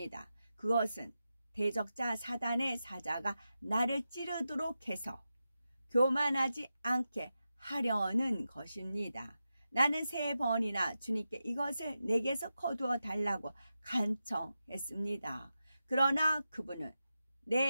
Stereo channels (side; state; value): both; inverted; correlation -0.90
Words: 그것은 대적자 사단의 사자가 나를 찌르도록 해서 교만하지 않게 하려는 것입니다. 나는 3번이나 주님께 이것을 내게서 거두어 달라고 간청했습니다. 그러나 그분은